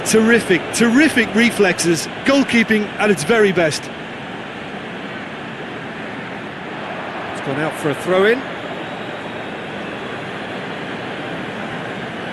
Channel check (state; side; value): identical; both; correlation 1.00